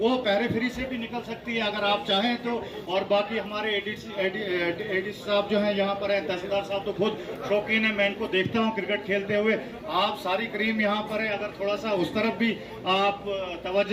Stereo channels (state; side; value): identical; both; correlation 1.00